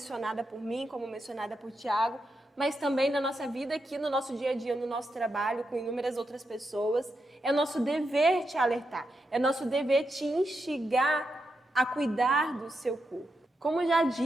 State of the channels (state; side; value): normal; both; correlation 0.85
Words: por mim, como mencionada por Tiago, mas também na nossa vida aqui, no nosso dia a dia, no nosso trabalho, com inúmeras outras pessoas. É nosso dever te alertar, é nosso dever te instigar a cuidar do seu corpo. Como já